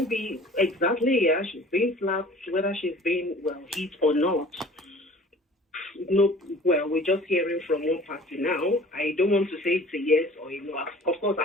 exactly, yeah, she's being slapped, whether she's being, well, hit or not. No, well, we're just hearing from one party now. I don't want to say it's a yes or a no. Of course,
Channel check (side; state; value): both; normal; correlation 0.47